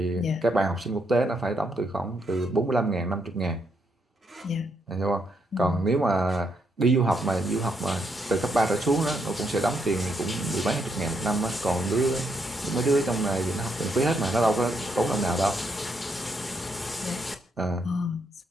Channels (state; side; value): normal; both; correlation 0.77